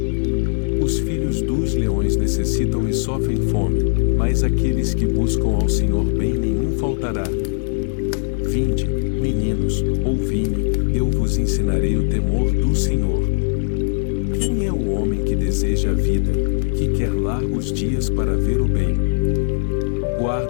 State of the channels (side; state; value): right; silent; digital silence